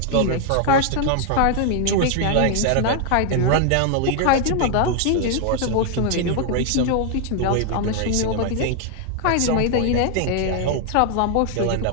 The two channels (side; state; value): both; different; correlation 0.00